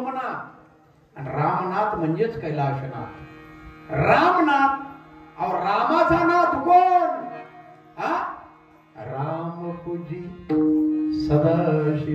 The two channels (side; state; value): both; identical; correlation 1.00